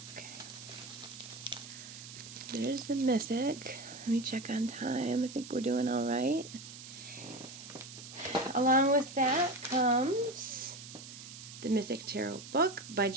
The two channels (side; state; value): right; noise; hiss, 13 dB below the sound